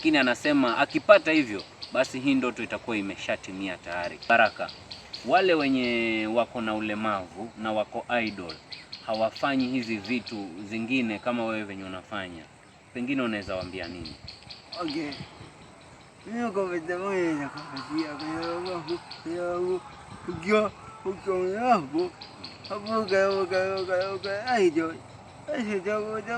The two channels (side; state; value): both; identical; correlation 1.00